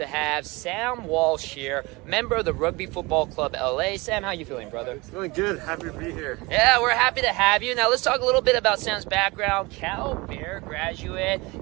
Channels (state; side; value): quieter; left; 24.0 dB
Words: have Sam Walsh here, member of the Rugby Football Club LA. Sam, how you feeling, brother? Feeling good. Happy to be here. Yeah, we're happy to have you. Now, let's talk a little bit about Sam's background. Cal Bear graduate.